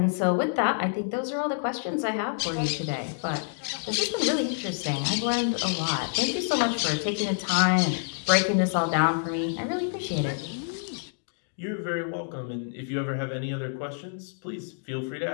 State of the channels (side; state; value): right; silent; digital silence